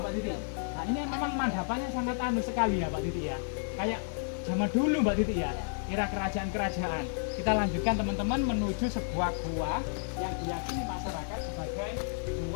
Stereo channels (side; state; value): right; silent; digital silence